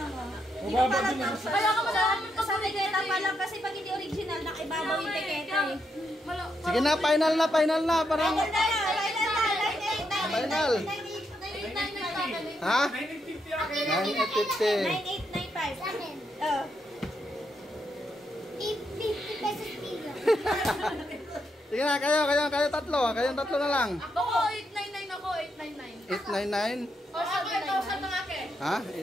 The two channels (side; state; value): both; normal; correlation 0.80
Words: Mababa din ang Kaya ka malaman ko sa Tiketa pa lang kasi pag hindi original, nakibabaw yung tiketa eh. Sige na, final na. Parang, final. Ha? 950 akin. 9,850. 9,895. Sa akin. Oh. 50 pesos kilo. Sige na, kayo tatlo. Kayong tatlo na lang. Ako 899 ako. 899. 899. O sa 8,000 lang akin. Ha?